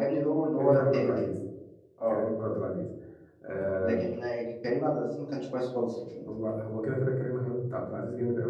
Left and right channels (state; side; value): identical; both; correlation 1.00